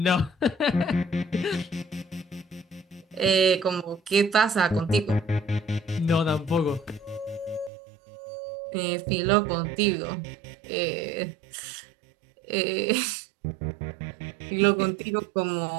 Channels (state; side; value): drops out; left; at 7.7 s